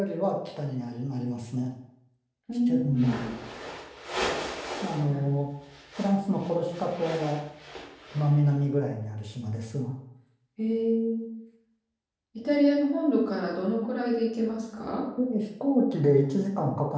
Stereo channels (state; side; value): identical; both; correlation 1.00